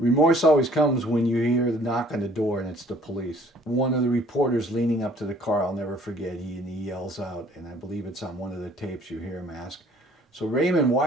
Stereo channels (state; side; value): normal; both; correlation 0.56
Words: always comes when you hear the knock on the door and it's the police. One of the reporters leaning up to the car, I'll never forget, he yells out, and I believe it's on one of the tapes, you hear him ask, "So Raymond,